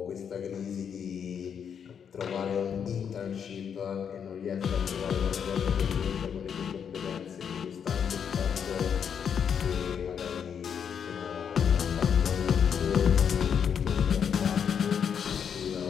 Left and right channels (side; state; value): right; quieter; 7.6 dB